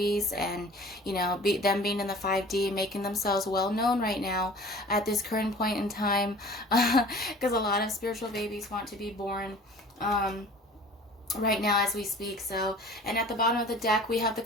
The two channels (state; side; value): normal; both; correlation 0.45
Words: and, you know, them being in the 5D, making themselves well known right now at this current point in time, because a lot of spiritual babies want to be born right now as we speak. So, and at the bottom of the deck we have the